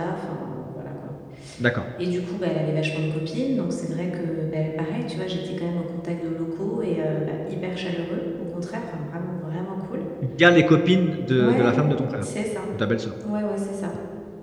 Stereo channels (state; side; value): identical; both; correlation 1.00